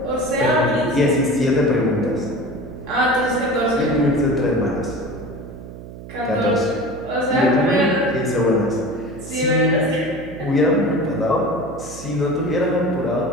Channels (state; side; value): noise; right; hum, 14 dB below the sound